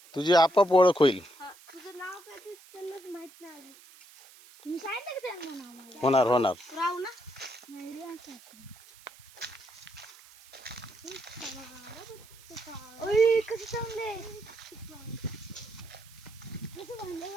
तुझी आपोआप ओळख होईल. होणार होणार.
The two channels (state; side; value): noise; right; hiss, 22 dB below the sound